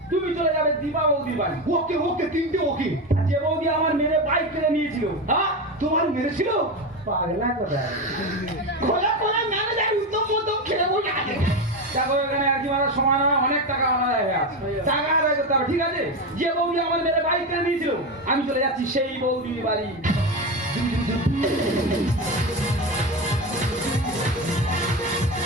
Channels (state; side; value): normal; both; correlation 0.17